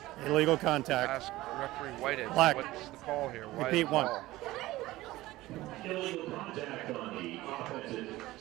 Illegal contact. ask referee Whitehead, Black. what's the call here? Why Repeat the one. call? Illegal contact on the offensive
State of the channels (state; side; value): quieter; left; 17.6 dB